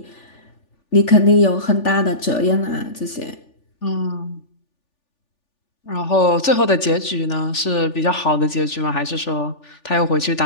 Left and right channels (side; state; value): right; late; 3.4 ms